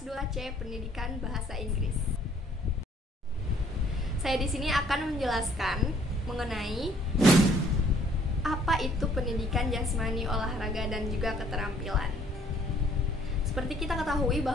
2C Pendidikan Bahasa Inggris. Saya di sini akan menjelaskan mengenai apa itu pendidikan jasmani, olahraga, dan juga keterampilan. Seperti kita ketahui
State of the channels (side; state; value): both; normal; correlation 0.61